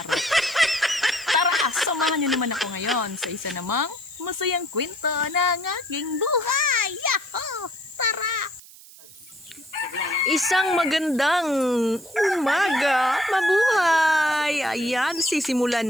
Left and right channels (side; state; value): right; noise; hiss, 21 dB below the sound